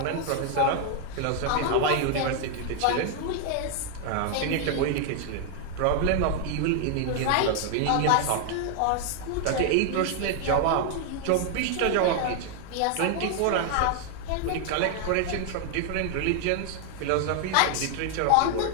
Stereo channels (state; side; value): different; both; correlation 0.00